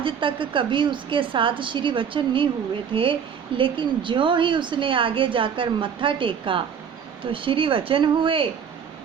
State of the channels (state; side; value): quieter; left; 7.4 dB